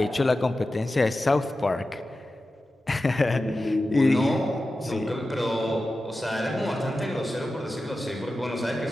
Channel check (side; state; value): both; normal; correlation 0.93